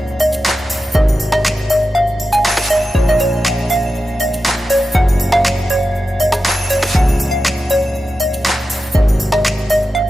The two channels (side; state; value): both; normal; correlation 0.91